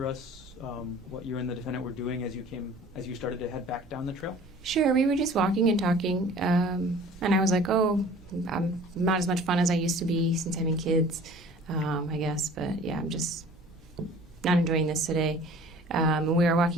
us what you and the defendant were doing as you started to head back down the trail? Sure, we were just walking and talking, and I was like, oh, I'm not as much fun as I used to be since having kids, I guess, but yeah, I'm just not enjoying this today. And we were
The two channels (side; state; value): both; normal; correlation 0.47